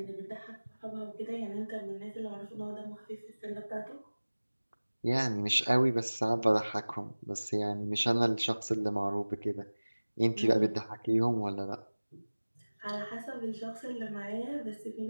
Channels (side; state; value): both; inverted; correlation -1.00